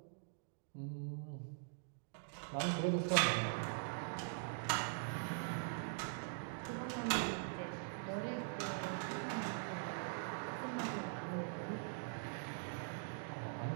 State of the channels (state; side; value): silent; left; digital silence